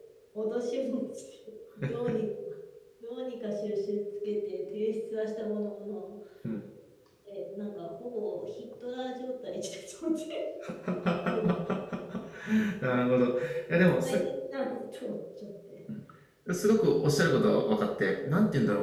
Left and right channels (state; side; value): identical; both; correlation 1.00